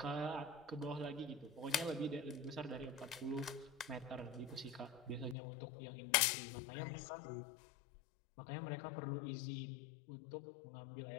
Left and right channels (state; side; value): drops out; right; at 5.4 s